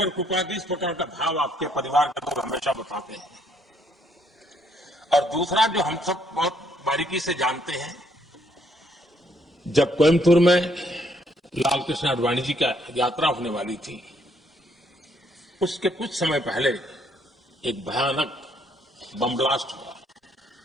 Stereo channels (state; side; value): normal; both; correlation 0.69